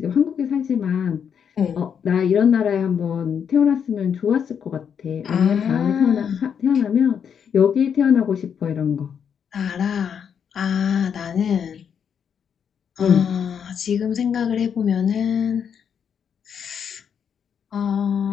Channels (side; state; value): right; quieter; 7.6 dB